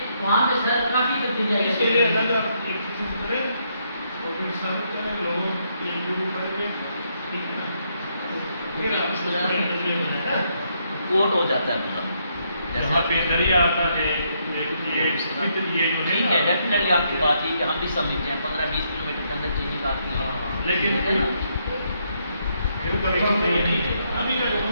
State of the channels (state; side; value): inverted; both; correlation -0.75